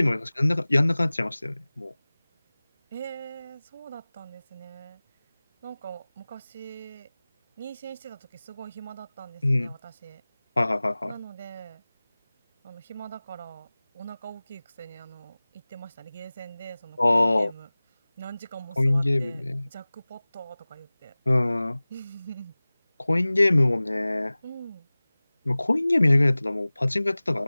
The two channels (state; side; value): inverted; both; correlation -0.99